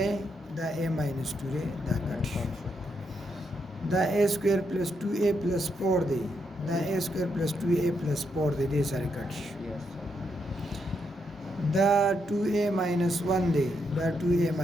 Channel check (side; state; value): both; normal; correlation 0.80